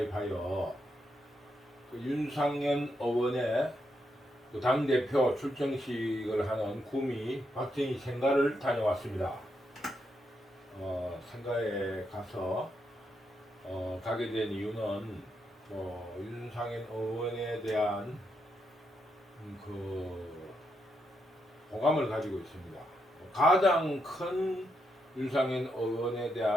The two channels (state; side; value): normal; both; correlation 0.81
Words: 그 윤상현 의원의 그 당대표 출정식을 하는 구미 박정희 생가를 다녀왔습니다. 생가에 가서 가게 된 이유는 윤상현 의원에 대한 그 호감을 가지고 있습니다. 가장 큰 윤상현 의원에